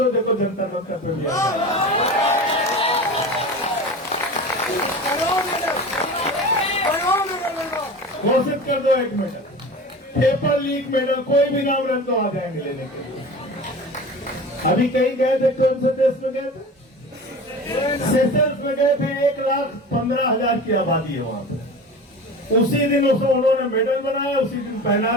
देखो जनता मंच पे भी घोषित कर दो 1 मेडल। पेपर लीक मेडल, कोई भी नाम रख दो, आ जाएंगे लेने के लिए। अभी कहीं गए थे, कौन से देश में गए थे? सेशल्स में गए थे। 1,15,000 की आबादी है वहां पे। उसी दिन उसको उन्होंने मेडल बनाया, उसी दिन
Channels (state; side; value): normal; both; correlation 0.34